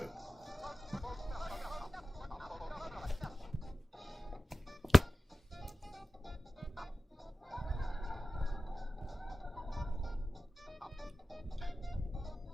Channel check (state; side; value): normal; both; correlation 0.95